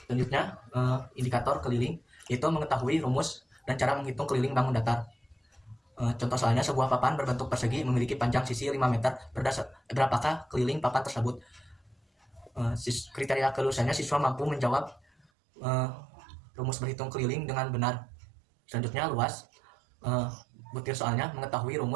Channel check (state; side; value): drops out; left; at 15.2 s